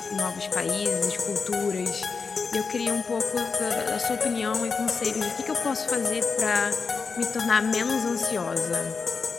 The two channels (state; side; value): quieter; right; 5.0 dB